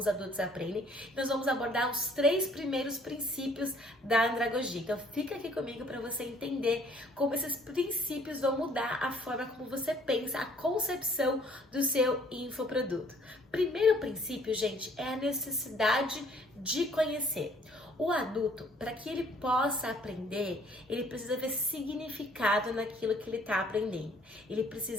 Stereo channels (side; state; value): both; normal; correlation 0.60